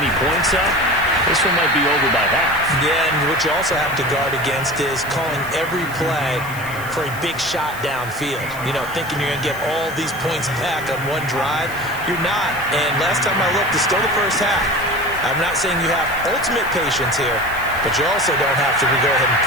points up. This one might be over by half. Yeah, and what you also have to guard against is calling every play for a big shot downfield. You know, thinking you're going to get all these points back on one drive. You're not. And last time I looked, it's still the first half. I'm not saying you have ultimate patience here, but you also don't have to go ahead and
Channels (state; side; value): noise; left; hiss, 16 dB below the sound